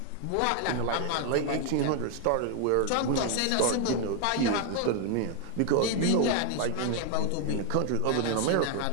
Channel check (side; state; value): both; different; correlation 0.00